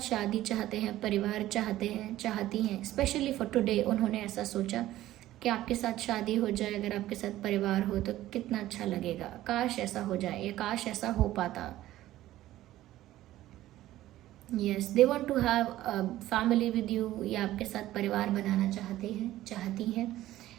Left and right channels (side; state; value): left; quieter; 14.7 dB